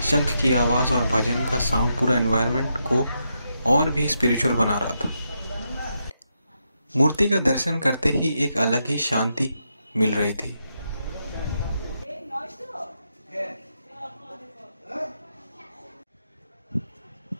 शंख की आवाज़ और भजन का साउंड पूरा एनवायरनमेंट को और भी स्पिरिचुअल बना रहा था। मूर्ति का दर्शन करते ही एक अलग ही शांति मिल रही थी।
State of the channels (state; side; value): inverted; both; correlation -0.83